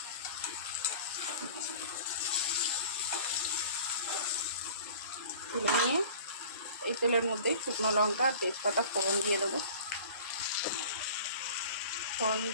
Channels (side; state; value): both; inverted; correlation -0.44